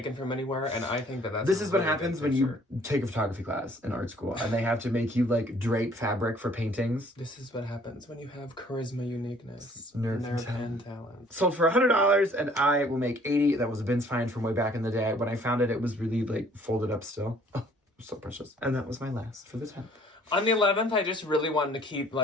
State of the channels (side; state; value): both; normal; correlation 0.58